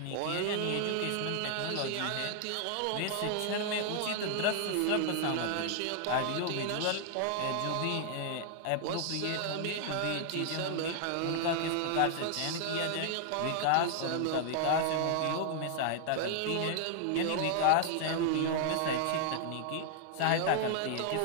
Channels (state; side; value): different; both; correlation 0.00